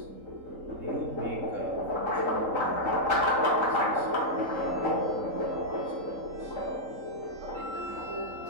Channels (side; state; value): left; late; 3.8 ms